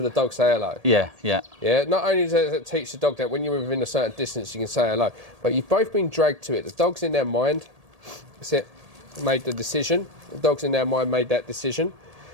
the dog say hello. Yeah. Yeah. Yeah, not only does it teach the dog that when you're within a certain distance you can say hello, but you've both been dragged to it. The dog's in their mind, that's it, made the decision. The dog's in their mind made that decision.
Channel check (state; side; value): late; left; 1.8 ms